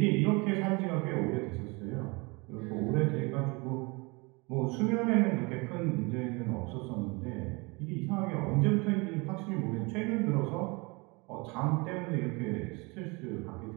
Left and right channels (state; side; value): quieter; left; 27.5 dB